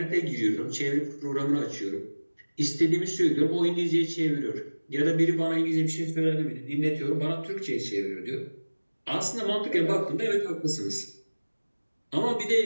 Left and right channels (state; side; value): inverted; both; correlation -1.00